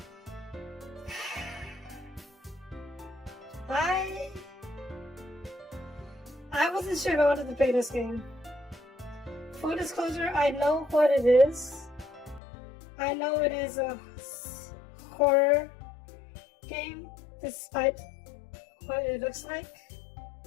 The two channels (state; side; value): drops out; right; at 12.4 s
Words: I wasn't sure if I wanted to play this game. Full disclosure, I know what it is. I know it is a horror game despite what it looks like.